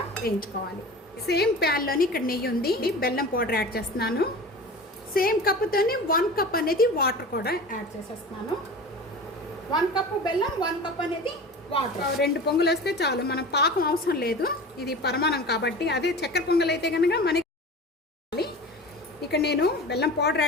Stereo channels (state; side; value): normal; both; correlation 0.35